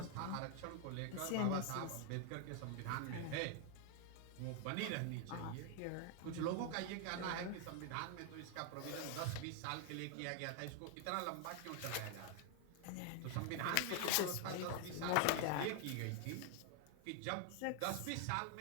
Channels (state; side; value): different; both; correlation 0.00